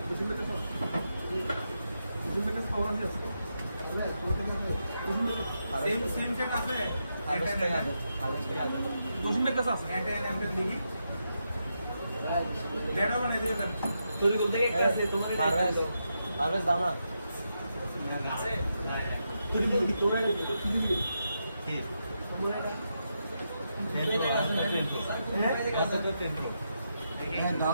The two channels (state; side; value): inverted; both; correlation -0.84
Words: বুঝিন না কেন? বুঝিন না কেন পাওয়ার আছে? বুঝিন না কেন? সেম সেট আছে, বুঝিন না কাছে আছে। এটা এমএম দেখি ডেটা বানাই দিয়ে দেন। তুই বলতে কি আছে তোমার পারভেজ দাও না তুই বল কি তোরা কি দাও